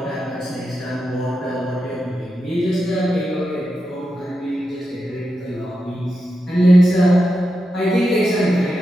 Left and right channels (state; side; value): normal; both; correlation 0.88